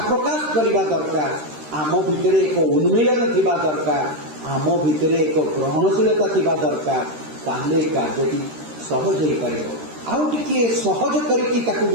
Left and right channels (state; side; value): late; left; 13 ms